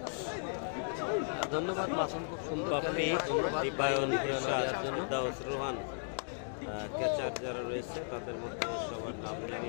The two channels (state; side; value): silent; right; digital silence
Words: ধন্যবাদ বাপ্পি, দীপায়ন, ইরশাদ, দাউস, রোহান, ক্যাচার যারা রয়েছে তাদের মধ্যে সবার নাম